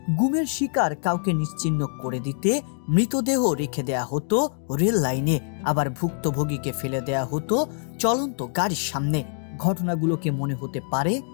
গুমের শিকার কাউকে নিশ্চিহ্ন করে দিতে মৃতদেহ রেখে দেয়া হতো রেল লাইনে, আবার ভুক্তভোগীকে ফেলে দেয়া হতো চলন্ত গাড়ির সামনে। ঘটনাগুলোকে মনে হতে পারে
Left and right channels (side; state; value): right; silent; 62 dB below the other